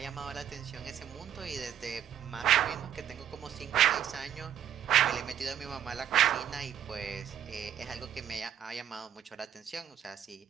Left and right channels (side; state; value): left; quieter; 9.7 dB